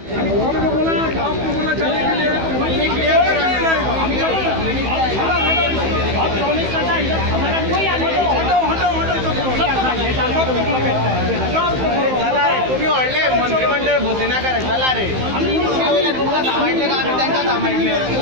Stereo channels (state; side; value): late; left; 15 ms